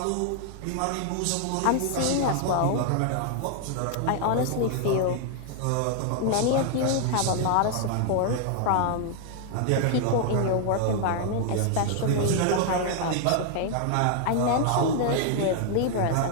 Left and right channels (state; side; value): different; both; correlation 0.00